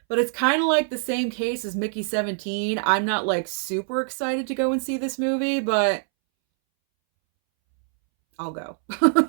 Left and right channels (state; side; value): silent; left; 63 dB below the other